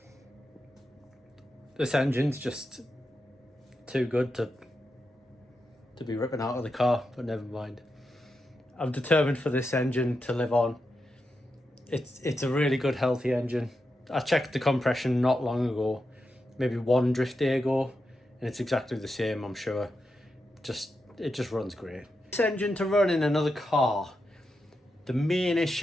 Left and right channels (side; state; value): both; normal; correlation 0.87